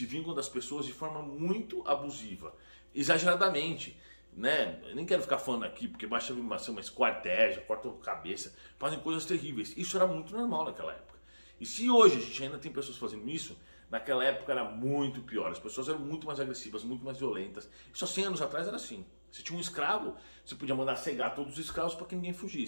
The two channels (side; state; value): both; inverted; correlation -1.00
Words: vingam das pessoas de forma muito abusiva, exageradamente, né? Eu nem quero ficar falando aqui, porque basta uma esquarteja, corta a cabeça, fazem coisas terríveis. Isso era muito normal naquela época. E se hoje a gente ainda tem pessoas fazendo isso, naquela época era muito pior. As pessoas eram muito mais agressivas, muito mais violentas. Isso há 100 anos atrás era assim. Se tinha um escravo, você podia mandar cegar todos os escravos para que ninguém